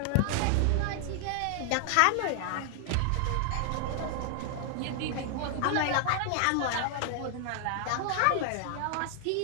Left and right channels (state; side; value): different; both; correlation 0.00